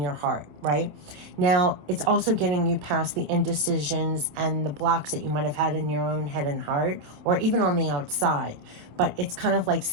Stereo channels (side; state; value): left; late; 27 ms